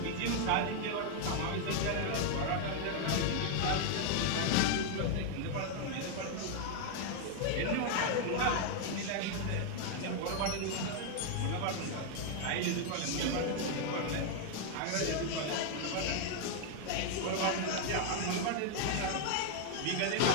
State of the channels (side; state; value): both; different; correlation 0.00